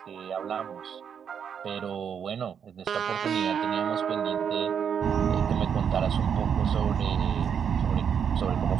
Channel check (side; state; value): left; quieter; 7.6 dB